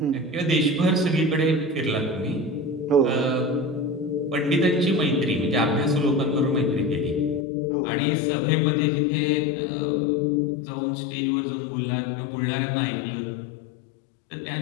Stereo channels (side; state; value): right; drops out; at 7.4 s